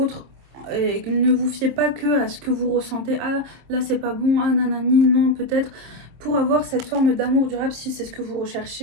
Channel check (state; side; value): late; left; 26 ms